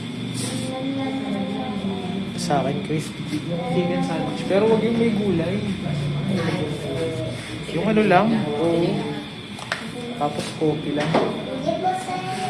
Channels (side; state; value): both; identical; correlation 1.00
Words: Sa akin, crispy. Yung chicken sandwich. Pero wag yung may gulay. Yung ano lang. Oo. Tapos coffee lang. Hindi